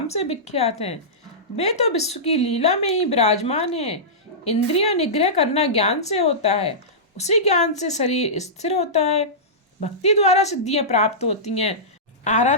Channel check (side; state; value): both; normal; correlation -0.17